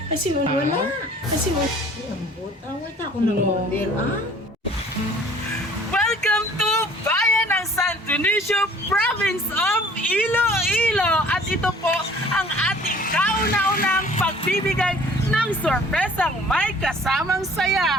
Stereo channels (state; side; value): normal; both; correlation 0.52